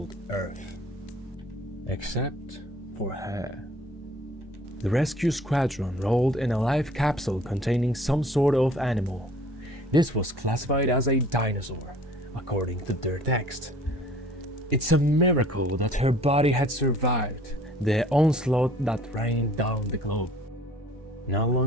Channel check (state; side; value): normal; both; correlation 0.52